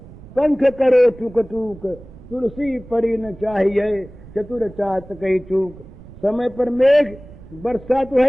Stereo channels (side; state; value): right; noise; rumble, 19 dB below the sound